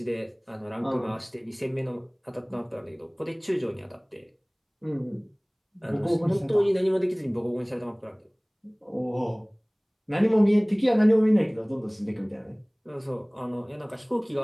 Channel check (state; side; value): identical; both; correlation 1.00